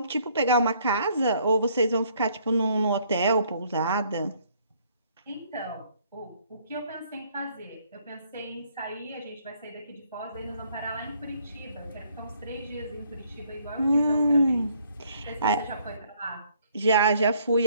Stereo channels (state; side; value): inverted; both; correlation -0.65